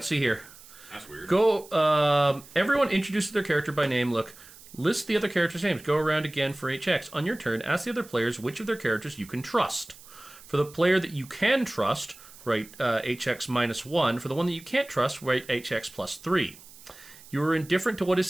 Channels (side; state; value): right; noise; hiss, 21 dB below the sound